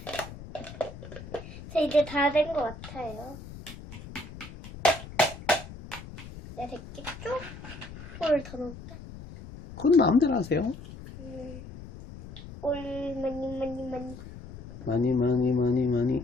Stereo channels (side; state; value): left; noise; rumble, 14 dB below the sound